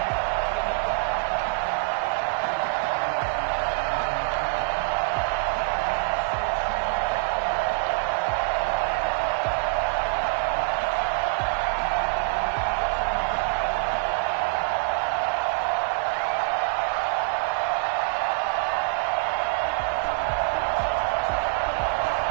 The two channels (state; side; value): silent; left; digital silence